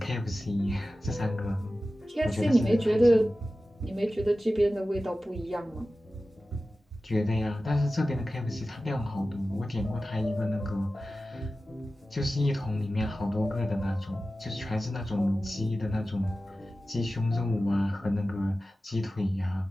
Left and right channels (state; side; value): normal; both; correlation 0.95